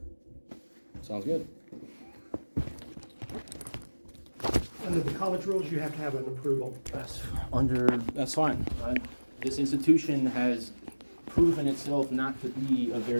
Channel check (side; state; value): both; inverted; correlation -1.00